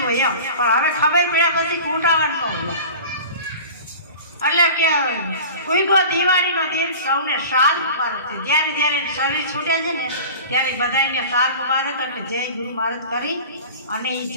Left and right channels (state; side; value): inverted; both; correlation -0.37